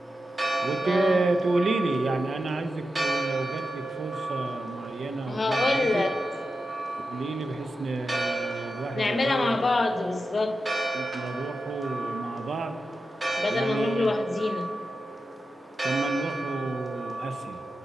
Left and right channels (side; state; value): both; normal; correlation 0.90